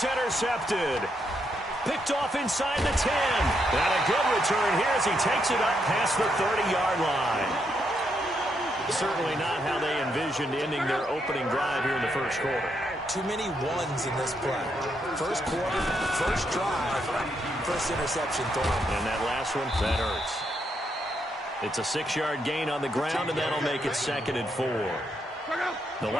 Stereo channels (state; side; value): normal; both; correlation 0.78